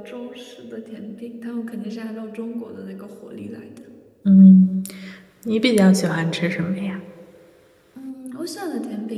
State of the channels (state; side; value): identical; both; correlation 1.00